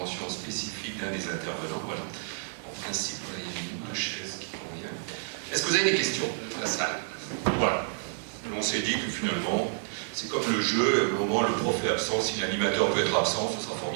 spécifique d'un des intervenants? Voilà. En principe, il y a une ou deux chaises qui convient. Est-ce que vous avez des questions dans la salle? Voilà. On s'est dit que finalement, c'est comme le jeu, au moment où le prof est absent, si l'animateur peut être absent, ce sera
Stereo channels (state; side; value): silent; left; digital silence